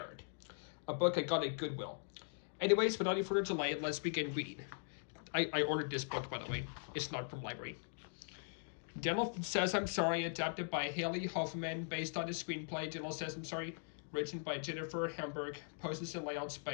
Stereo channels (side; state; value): right; silent; digital silence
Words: a book I got at Goodwill. Anyways, without any further delay, let's begin reading. I ordered this book, by the way. It's not from library. Daniel Says I'm Sorry, adapted by Haley Hoffman, based on the screenplay Daniel Says I'm Sorry, written by Jennifer Hamburg, posters and layouts